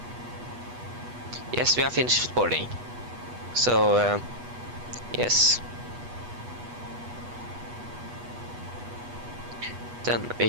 Yes, we have finished boarding. So yes. Then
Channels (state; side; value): late; left; 8.2 ms